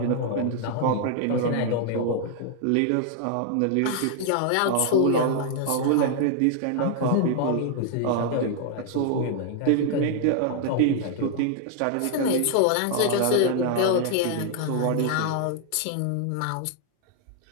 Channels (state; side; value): different; both; correlation 0.00